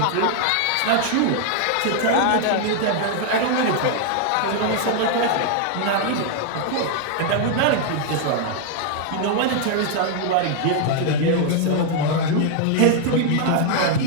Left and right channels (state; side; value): different; both; correlation 0.00